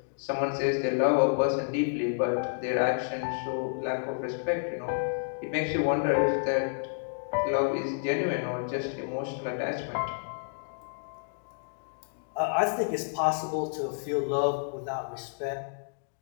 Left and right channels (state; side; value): silent; right; digital silence